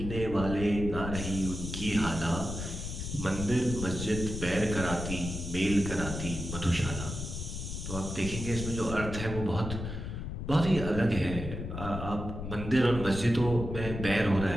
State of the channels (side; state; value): left; noise; rumble, 6 dB below the sound